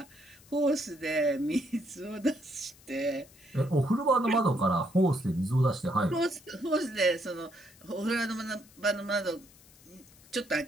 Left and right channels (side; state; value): left; noise; hiss, 25 dB below the sound